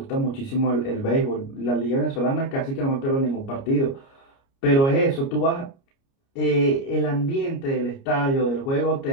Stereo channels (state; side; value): late; right; 29 ms